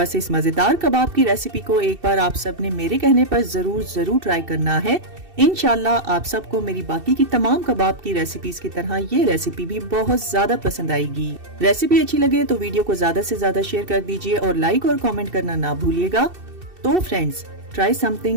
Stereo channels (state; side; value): late; left; 2.7 ms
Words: इस मजेदार कबाब की रेसिपी को एक बार आप सब ने मेरे कहने पर जरूर ट्राई करना है। इंशाल्लाह आप सबको मेरी बाकी की तमाम कबाब की रेसिपीज की तरह ये रेसिपी भी बहुत ज्यादा पसंद आएगी। रेसिपी अच्छी लगे तो वीडियो को ज्यादा से ज्यादा शेयर कर दीजिए और लाइक और कमेंट करना ना भूलिएगा। तो फ्रेंड्स, ट्राई